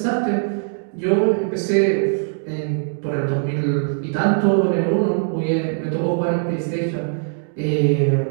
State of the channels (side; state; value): left; silent; digital silence